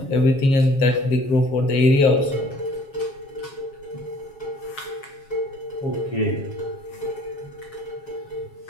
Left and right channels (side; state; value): right; late; 7.3 ms